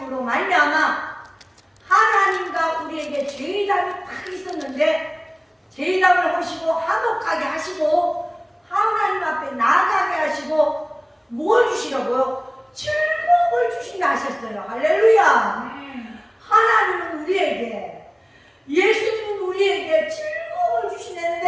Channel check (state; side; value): identical; both; correlation 1.00